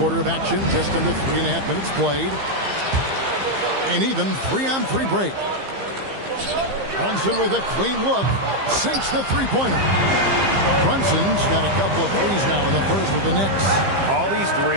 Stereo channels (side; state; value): left; late; 15 ms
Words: of action, just under 3.5 minutes played. And even 3-on-3 break. Brunson with a clean look. Sinks the three-pointer. Brunson's got a couple of threes now in the first with the Knicks. All these